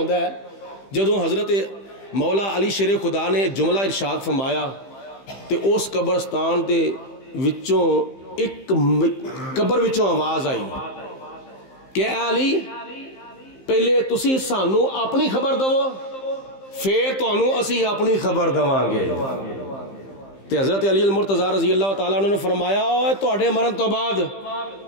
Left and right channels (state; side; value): late; right; 15 ms